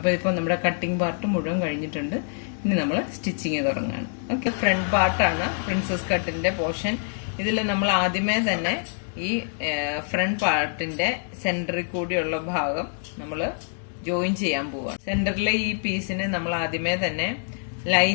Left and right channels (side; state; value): right; silent; digital silence